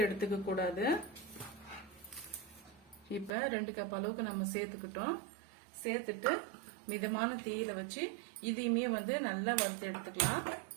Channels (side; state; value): left; drops out; at 3.3 s